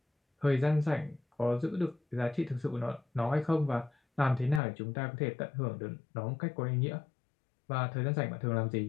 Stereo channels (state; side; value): drops out; right; at 4.6 s